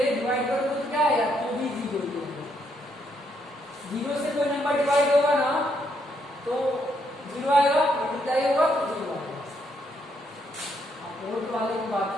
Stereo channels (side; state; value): both; normal; correlation 0.75